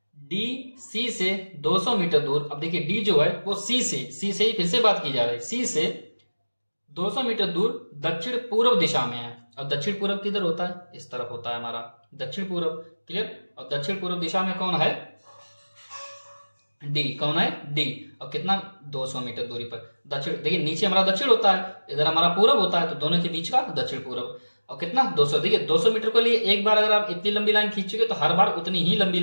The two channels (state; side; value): inverted; both; correlation -1.00